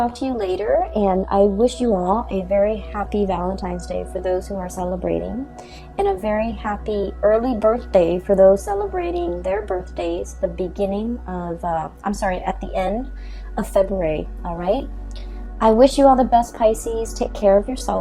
to you later, and I wish you all a very happy Valentine's Day for those who are celebrating, and a very happy early birthday for those celebrating their birthdays at the end of February, all right? I wish you all the best, Pisces. Take care of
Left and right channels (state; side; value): identical; both; correlation 1.00